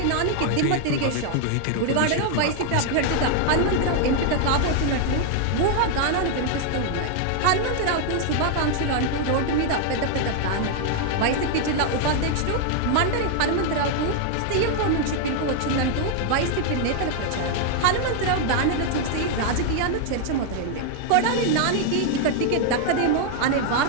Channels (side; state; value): both; different; correlation 0.00